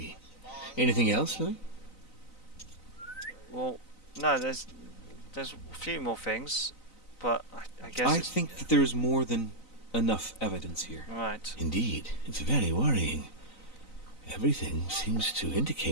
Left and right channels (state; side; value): late; right; 4.0 ms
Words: Anything else, Louis? Well, no, there's a few more things, but I guess I it's... think that there is more than enough evidence here. Right. Indeed, it's very worrying. Everything seems to